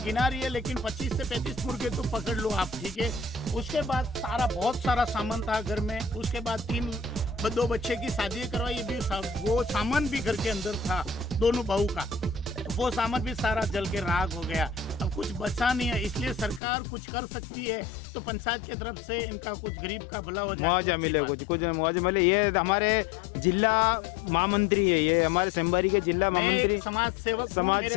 गिना रही है लेकिन 25 से 35 मुर्गे तो पकड़ लो आप, ठीक है। उसके बाद बहुत सारा सामान था घर में, उसके बाद 2 बच्चे की शादी करवाई, भी वो सामान भी घर के अंदर था दोनों बहू का, तो वो सामान भी सारा जल के राख हो गया। अब कुछ बचा नहीं है, इसलिए सरकार कुछ कर सकती है तो पंचायत की तरफ से इनका कुछ गरीब का भला हो जाए, मुआवजा मिले, कुछ मुआवजा मिले। ये हमारे जिला महामंत्री है, ये हमारे संबारी के जिला महामंत्री समाज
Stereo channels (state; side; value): drops out; right; at 16.6 s